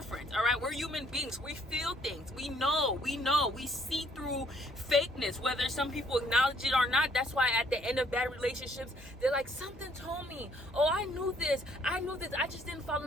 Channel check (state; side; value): normal; both; correlation 0.65